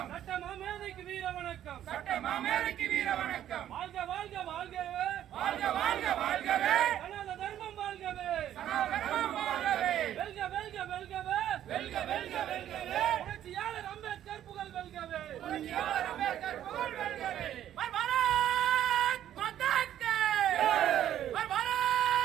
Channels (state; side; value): quieter; left; 11.3 dB